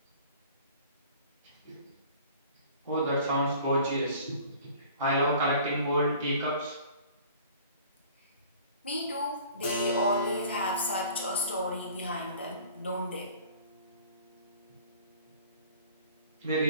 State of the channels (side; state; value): both; inverted; correlation -0.48